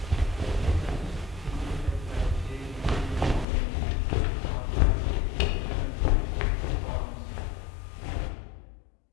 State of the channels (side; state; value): right; drops out; at 3.5 s